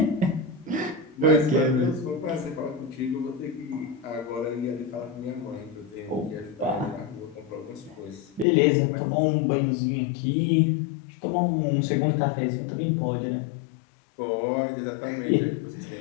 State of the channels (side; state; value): right; drops out; at 8.5 s